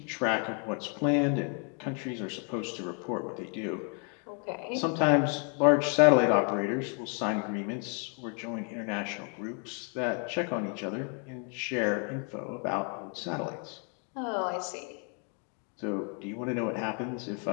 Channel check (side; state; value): right; quieter; 39.3 dB